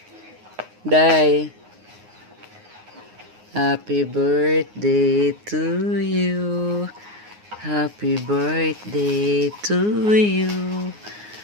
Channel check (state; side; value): late; left; 9.6 ms